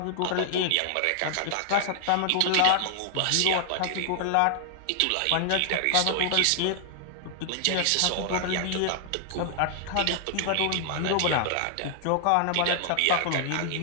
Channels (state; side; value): different; both; correlation 0.00